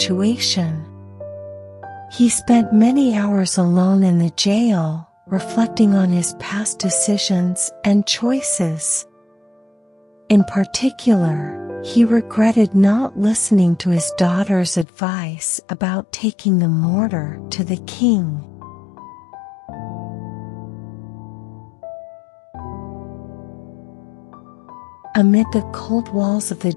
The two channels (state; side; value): drops out; right; at 14.9 s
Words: He spent many hours alone in the jail, reflecting on his past decisions and choices. In particular, he regretted not listening to his daughter's advice about taking the mortar to the king. Amid the cold walls of the